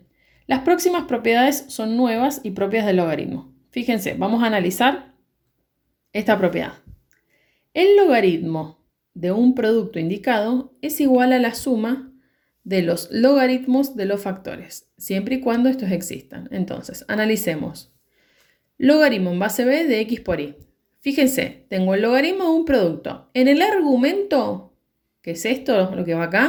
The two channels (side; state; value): both; identical; correlation 1.00